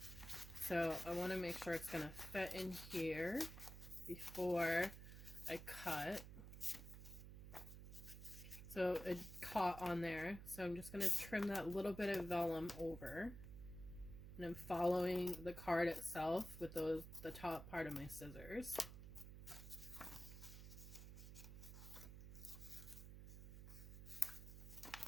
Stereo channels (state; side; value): noise; right; hum, 11 dB below the sound